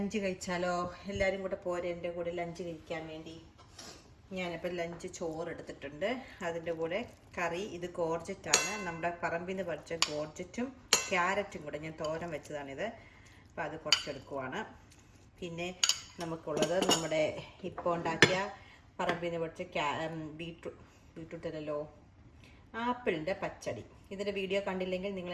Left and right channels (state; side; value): identical; both; correlation 1.00